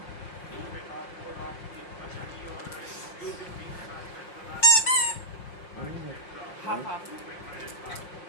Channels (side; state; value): right; late; 5.6 ms